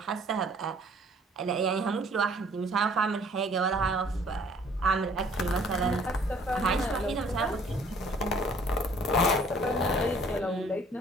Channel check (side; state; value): both; normal; correlation 0.57